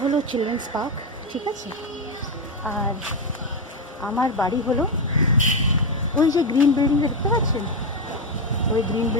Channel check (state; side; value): normal; both; correlation 0.09